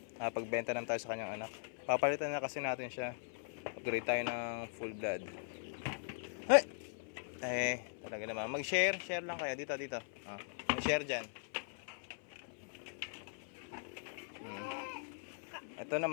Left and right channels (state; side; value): silent; right; 51 dB below the other